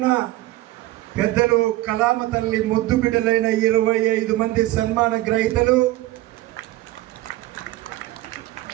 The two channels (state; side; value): quieter; left; 17.0 dB